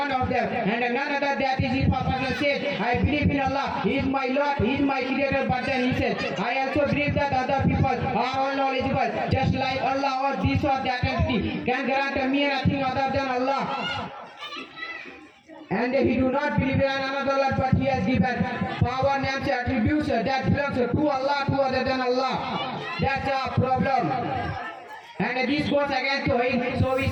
of them. And another that is if a person says, I believe in Allah, He is my Lord, He is my Creator, but then he says, I also believe that other people are all knowledgeable, just like Allah or this or that entity can grant me nothing other than Allah. And he do not believe in another Lord, but he has given power, names, attributes that belongs to Allah, to other than Allah. That's a problem. And this goes against Tawheed. So we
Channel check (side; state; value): both; identical; correlation 1.00